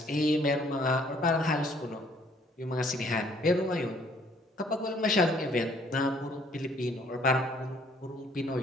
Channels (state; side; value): normal; both; correlation 0.62